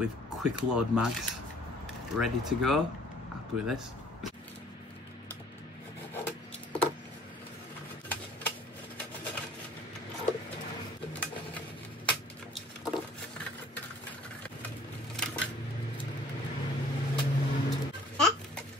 quick load mags ready to go. Happy with this.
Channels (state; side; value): normal; both; correlation 0.54